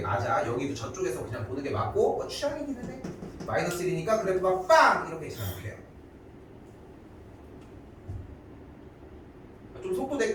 맞아. 여기도 저쪽에서 그냥 보는 게 맞고 취향이기는 해. 마이너스 1이니까 그래프가 빵! 이렇게 생각해요. 좀 속도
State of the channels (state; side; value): identical; both; correlation 1.00